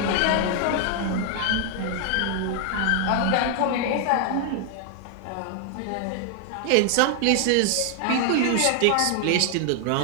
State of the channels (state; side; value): different; both; correlation 0.00